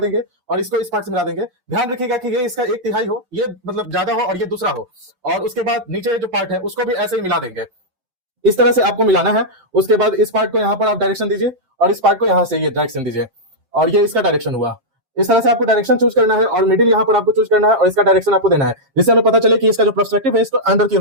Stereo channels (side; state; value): left; late; 7.5 ms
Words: और इसको इस पार्ट से मिला देंगे। ध्यान रखिएगा कि ये इसका एक तिहाई हो, ये मतलब ज्यादा हो और ये दूसरा हो। और उसके बाद नीचे जो पार्ट है उसको भी ऐसे ही मिला देंगे। इस तरह से आपको मिलाना है। उसके बाद इस पार्ट को यहाँ पर आप डायरेक्शन दीजिए और इस पार्ट को यहाँ से ये डायरेक्शन दीजिए और ये इसका डायरेक्शन हुआ। इस तरह से आपको डायरेक्शन चूज करना है और मिडिल यहाँ पर आपको चूज करना है और इसका डायरेक्शन आपको देना है, जिससे हमें पता चले कि इसका जो पर्सपेक्टिव है इसको अंदर की ओर